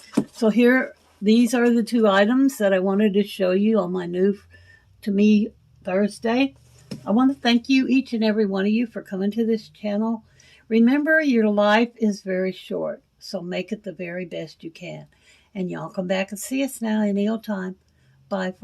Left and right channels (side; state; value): both; identical; correlation 1.00